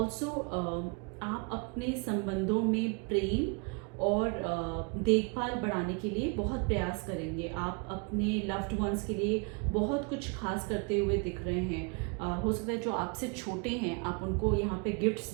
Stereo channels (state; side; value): quieter; left; 33.7 dB